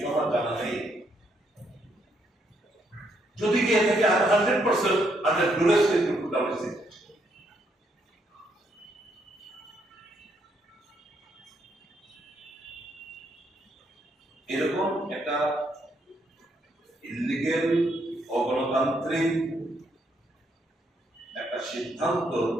আমার জানা নেই। যদি গিয়ে থাকে 100% আন্ডার ডুরেস এরকম একটা ইলিগেল অগণতান্ত্রিক একটা সিদ্ধান্ত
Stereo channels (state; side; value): normal; both; correlation 0.74